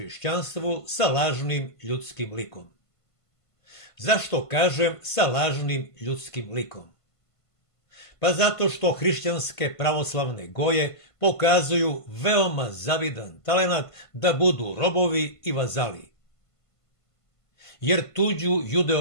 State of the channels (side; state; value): right; late; 1.5 ms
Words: sa lažnim ljudskim likom. Zašto kažem sa lažnim ljudskim likom? Pa zato što hrišćanske pravoslavne goje pokazuju veoma zavidan talenat da budu robovi i vazali. Jer tuđu